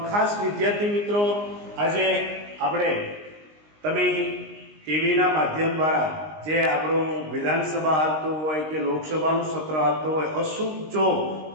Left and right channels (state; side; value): late; left; 19 ms